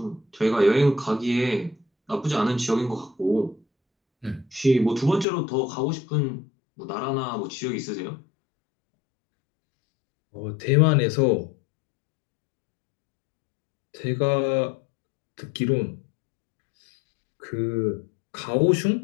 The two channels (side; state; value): right; drops out; at 5.2 s